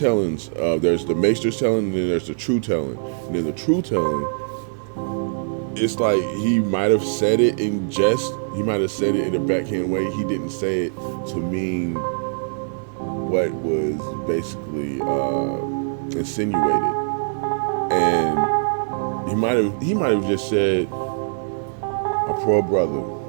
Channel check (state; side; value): silent; left; 57 dB below the other